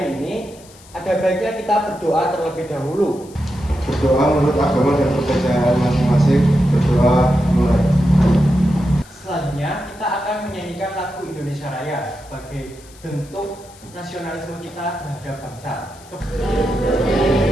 ini, ada baiknya kita berdoa terlebih dahulu. Berdoa menurut agama dan kepercayaan masing-masing. Berdoa mulai. Selanjutnya kita akan menyanyikan lagu Indonesia Raya sebagai bentuk nasionalisme kita terhadap bangsa.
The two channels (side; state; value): left; noise; hiss, 24 dB below the sound